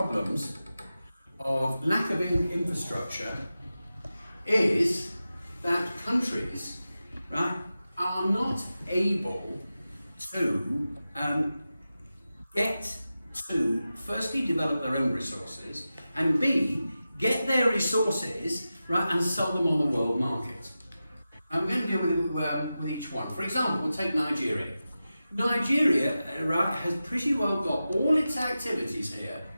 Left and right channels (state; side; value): inverted; both; correlation -0.93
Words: lack of infrastructure is that countries, right, are not able to get to firstly develop their own resources, and B, get their resources, right, and sell them on the world market. I'm going to deal with each one. For example, we'll take Nigeria. Nigeria, right, has pretty well got all its activities here